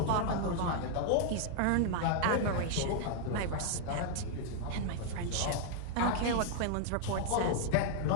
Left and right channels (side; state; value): both; different; correlation 0.00